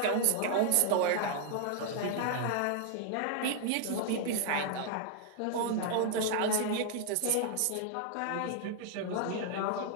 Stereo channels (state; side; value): different; both; correlation 0.00